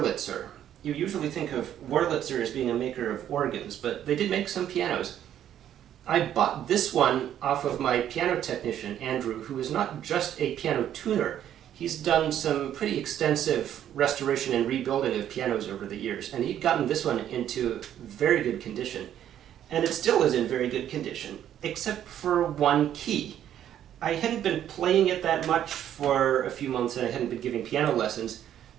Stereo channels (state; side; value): quieter; left; 10.7 dB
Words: You usually think of Wurlitzer as being a maker of organs, but they did make some pianos. I bought this one off of my piano technician, Andrew, who is not just a piano tuner. He's done some pretty extensive restoration and rebuilding of pianos over the years, and he'd gotten this one into very good condition. And it still is in very good condition, except for one key. I hadn't been playing it that much for a few months, and I hadn't been giving piano lessons,